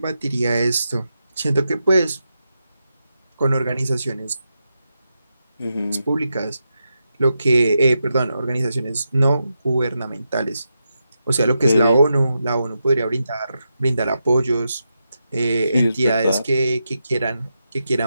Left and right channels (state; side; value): inverted; both; correlation -0.87